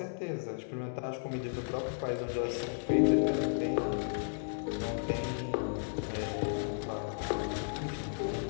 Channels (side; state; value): right; silent; digital silence